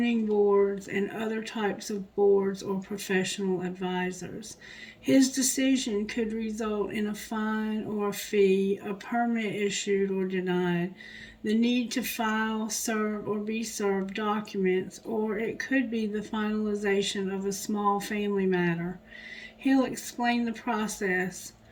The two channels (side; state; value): both; identical; correlation 1.00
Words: boards, and other types of boards or professional advisors. His decision could result in a fine or a fee, a permit issued or denied. the need to file, serve, or be served documents, or it could be the finalization of a small family matter. He'll explain the process,